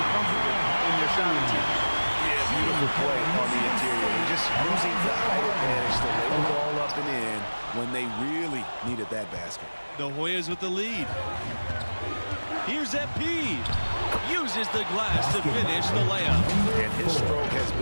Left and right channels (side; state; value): both; inverted; correlation -1.00